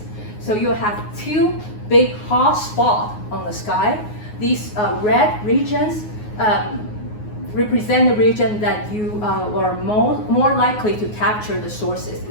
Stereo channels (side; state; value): right; late; 9.5 ms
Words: So you have 2 big hot spots on the sky. These red regions represent the region that you are more likely to capture the sources.